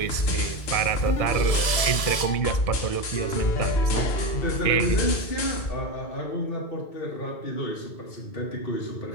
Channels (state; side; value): late; right; 2.1 ms